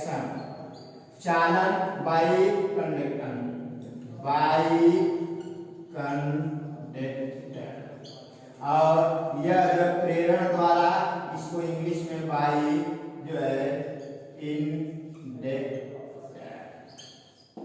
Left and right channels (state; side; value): identical; both; correlation 1.00